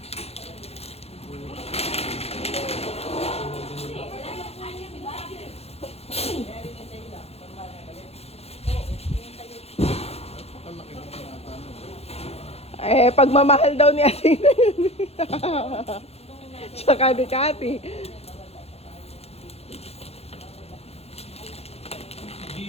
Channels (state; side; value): late; right; 0.30 ms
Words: Eh, pagmamahal daw ni Athena yun. Tsaka ni Cathy.